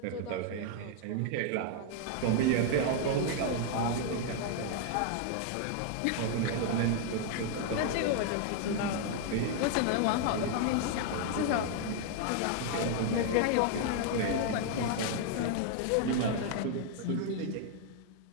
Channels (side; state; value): both; different; correlation 0.00